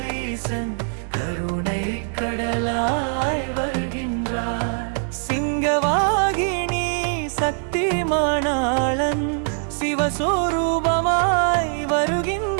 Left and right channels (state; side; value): silent; left; 61 dB below the other